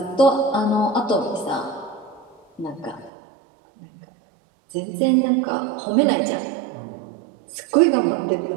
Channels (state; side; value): drops out; left; at 3.1 s